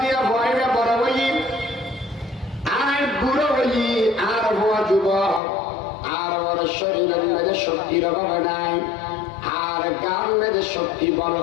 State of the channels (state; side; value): drops out; right; at 5.4 s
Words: দিয়া ভয়বে বড় হই আর বুড়ো হই আর হওয়া যুবক আর ওর শরীরের মধ্যে শক্তির অভাব নাই আর গান মধ্যে শক্তি বড়